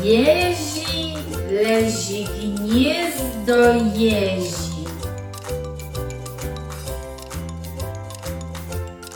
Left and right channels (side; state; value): both; identical; correlation 1.00